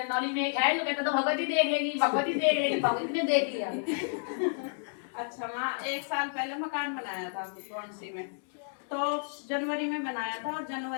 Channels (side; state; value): right; silent; digital silence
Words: नॉलेज में एक है जो कहता तो भगवती देख लेगी, भगवती देख लेगी, भगवती ने देख लिया। अच्छा माँ, 1 साल पहले मकान बनाया था कौनसी में, तो जनवरी में बनाया था और